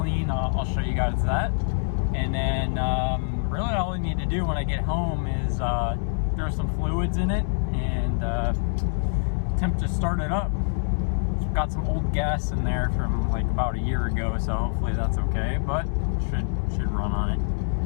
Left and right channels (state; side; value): silent; right; 62 dB below the other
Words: I'll show you guys that. And then really all I need to do when I get home is throw some fluids in it and attempt to start it up. It's got some old gas in there from like about a year ago, so hopefully that's okay, but should run on